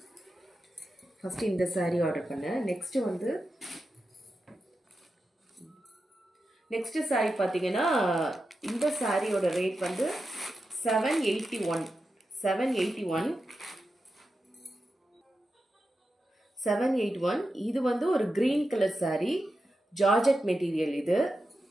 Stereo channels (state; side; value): normal; both; correlation 0.90